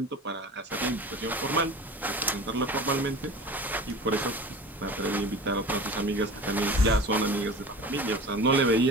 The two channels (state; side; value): normal; both; correlation 0.36